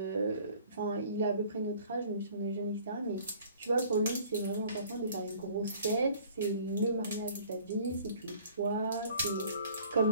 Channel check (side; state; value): both; inverted; correlation -0.52